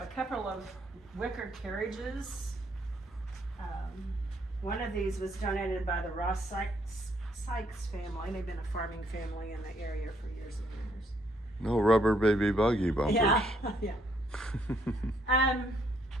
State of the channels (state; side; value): normal; both; correlation 0.70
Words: a couple of wicker carriages. One of these was donated by the Ross Sykes family. They've been a farming family in the area for years and years. No rubber baby buggy bumpers. Yeah, yeah.